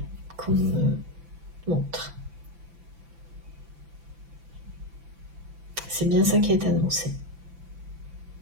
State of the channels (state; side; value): late; left; 5.9 ms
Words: qu'on me montre. C'est bien ça qui est annoncé.